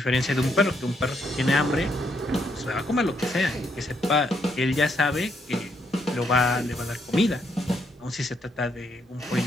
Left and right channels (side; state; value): both; normal; correlation 0.75